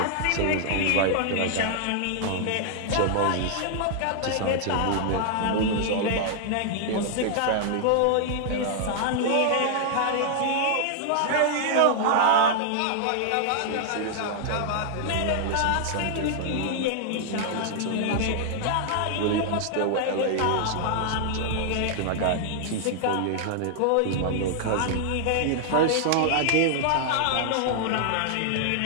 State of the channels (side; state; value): both; different; correlation 0.00